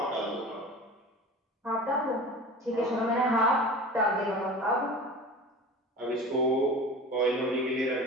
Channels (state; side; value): normal; both; correlation 0.35